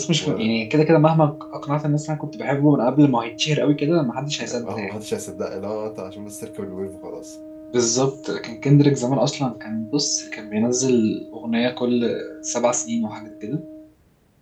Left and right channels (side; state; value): both; identical; correlation 1.00